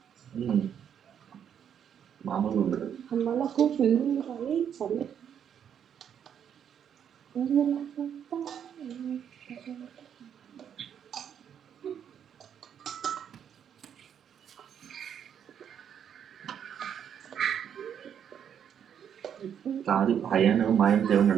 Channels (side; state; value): left; quieter; 8.6 dB